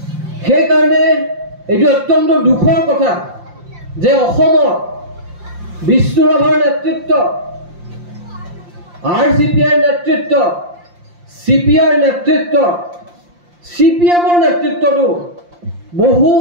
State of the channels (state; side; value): late; left; 5.7 ms